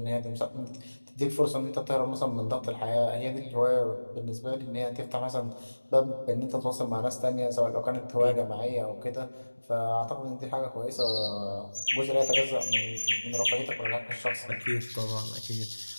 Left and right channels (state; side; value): inverted; both; correlation -1.00